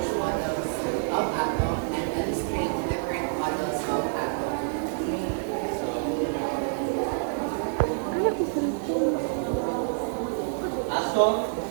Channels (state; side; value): silent; left; digital silence